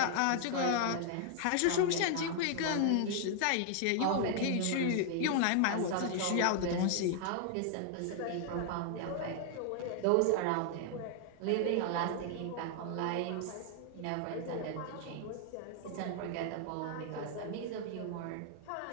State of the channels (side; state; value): both; different; correlation 0.00